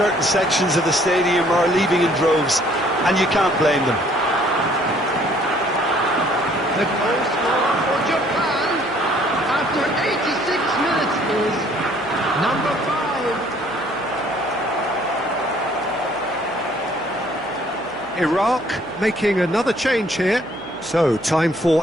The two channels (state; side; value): noise; left; hum, 24 dB below the sound